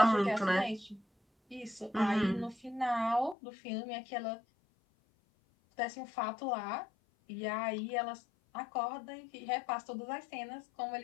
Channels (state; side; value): drops out; right; at 3.4 s